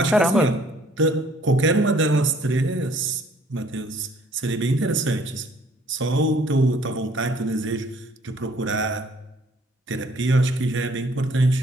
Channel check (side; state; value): both; normal; correlation 0.59